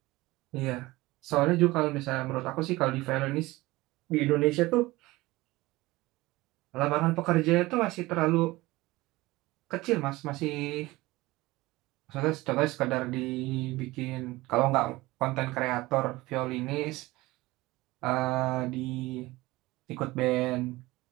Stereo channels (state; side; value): quieter; left; 19.8 dB